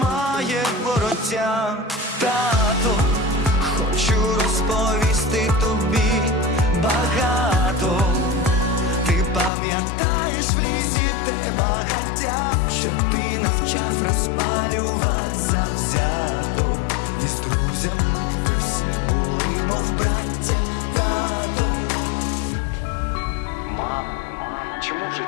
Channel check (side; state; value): right; drops out; at 9.5 s